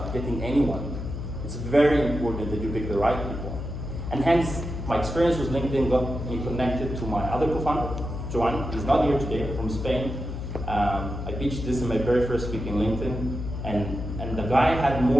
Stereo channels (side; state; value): left; noise; hum, 6 dB below the sound